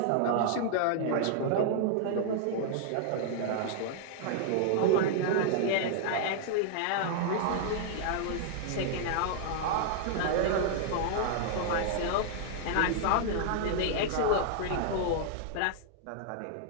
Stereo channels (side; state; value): both; different; correlation -0.01